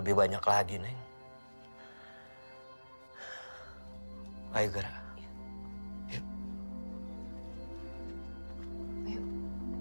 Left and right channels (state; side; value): inverted; both; correlation -1.00